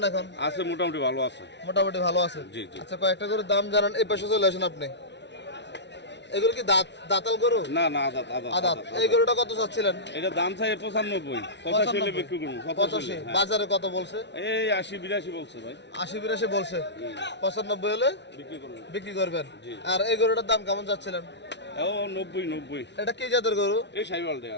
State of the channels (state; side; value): late; right; 0.51 ms